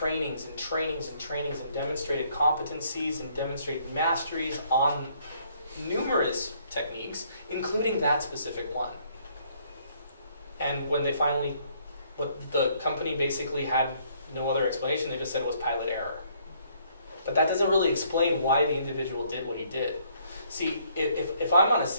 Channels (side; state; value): both; inverted; correlation -0.66